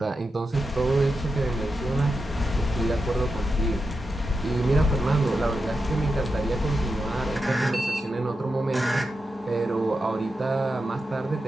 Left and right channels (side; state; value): both; normal; correlation 0.88